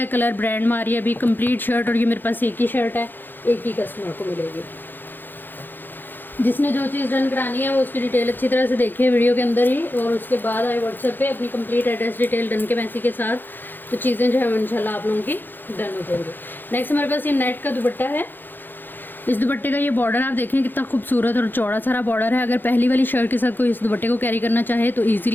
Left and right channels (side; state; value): right; late; 0.093 ms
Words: colour, brand Maria भी कंप्लीट शर्ट। और ये मेरे पास एक ही शर्ट है, एक ही कस्टमर को मिलेगी। जिसने जो चीज़ डन करानी है वो उसकी डिटेल अच्छी तरह से देखिए वीडियो के अंदर ही, और उसके बाद आए व्हाट्सएप पे अपनी कंप्लीट एड्रेस डिटेल डन के मैसेज के साथ, तो चीज़ें जो है इंशाल्लाह आप लोगों की डन हो जाएंगी। नेक्स्ट हमारे पास ये नेट का दुपट्टा है। इस दुपट्टे का ये बॉर्डर आप देखें कितना खूबसूरत और चौड़ा सारा बॉर्डर है। अगर पहली वाली शर्ट के साथ कोई इस दुपट्टे को कैरी करना चाहे तो